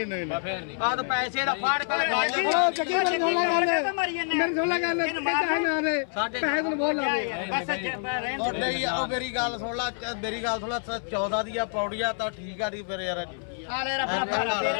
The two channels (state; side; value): silent; right; 60 dB below the other